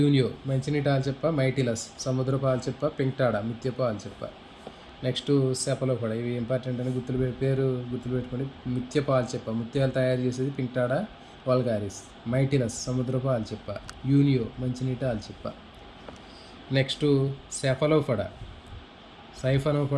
మంచినీటి ఆల్చిప్ప, మైటిలస్ సముద్రపు ఆల్చిప్ప, పింక్టాడా ముత్యపు ఆల్చిప్ప. Next Cephalopoda. ఇవి ఇంపార్టెంట్ అని పేరు గుర్తుపెట్టుకోండి. ముత్యపు ఆల్చిప్ప ముత్యాలు తయారు చేసేది పింక్టాడా వల్గారిస్. మైటిలస్ సముద్రపు ఆల్చిప్ప. యూనియో మంచినీటి ఆల్చిప్ప. నెక్స్ట్ సెఫలోపోడా,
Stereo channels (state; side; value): identical; both; correlation 1.00